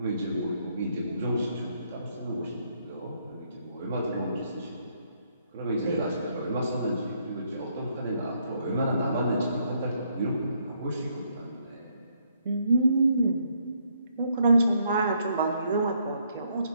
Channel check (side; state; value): both; inverted; correlation -0.72